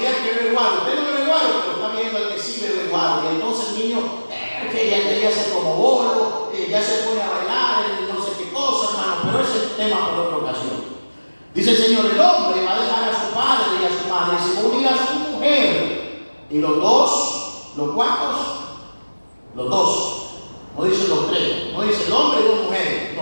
que bebe guaro. Usted no bebe guaro, pero está viendo al que sí bebe guaro. Y entonces el niño, que ya se como bolo, ya se pone a bailar, no sé qué cosa, hermano. Pero ese es el tema por otra ocasión. Dice el Señor: el hombre va a dejar a su padre y a su madre y se va a unir a su mujer. Y los dos, ¿los cuantos? Los dos. No dice los tres, no dice el hombre y dos mujeres,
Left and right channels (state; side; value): inverted; both; correlation -1.00